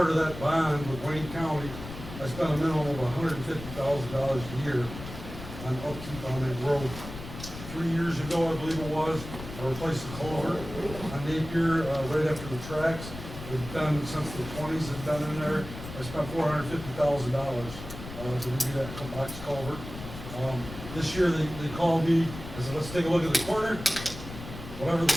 of that bond with Wayne County, I spent a minimum of $150,000 a year on upkeep on that road. 3 years ago, I believe it was, I replaced the culvert on Napier, right after the tracks. We've done, since the 20s, have done in there. I spent $450,000 to redo that box culvert. This year, they called me, I said, let's take a look at the corner. Whatever the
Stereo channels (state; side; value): noise; left; rumble, 11 dB below the sound